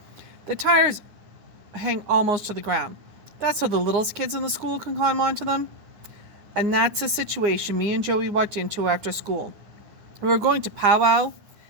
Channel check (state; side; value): late; left; 9.8 ms